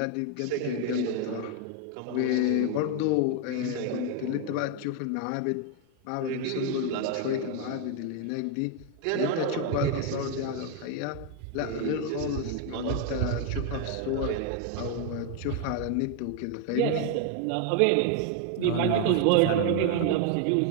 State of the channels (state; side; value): different; both; correlation 0.01